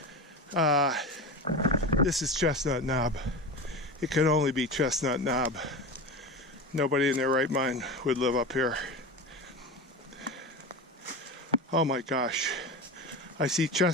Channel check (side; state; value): both; normal; correlation 0.25